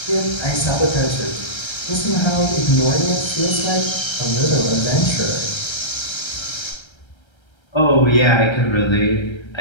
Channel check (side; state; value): right; late; 1.3 ms